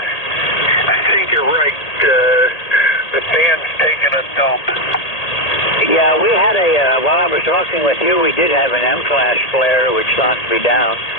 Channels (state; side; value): late; right; 1.8 ms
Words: I think you're right. The band's taking a dump. Yeah, we had while I was talking with you, we did have an M-class flare, which knocked me down.